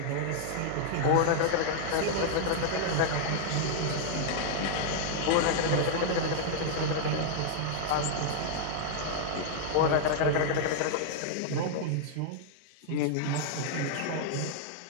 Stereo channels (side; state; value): both; different; correlation -0.01